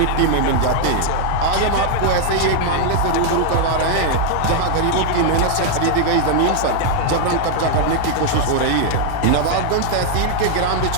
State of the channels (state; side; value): different; both; correlation 0.00